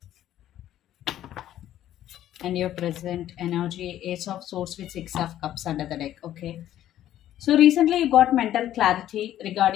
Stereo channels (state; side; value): quieter; right; 12.3 dB